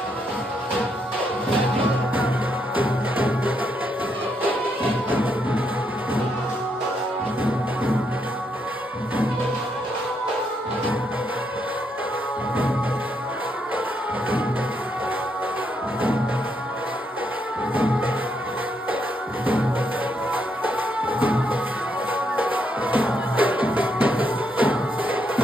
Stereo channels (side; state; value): both; normal; correlation 0.77